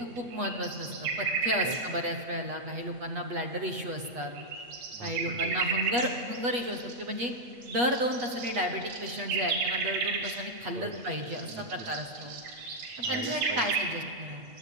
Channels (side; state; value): left; late; 8.3 ms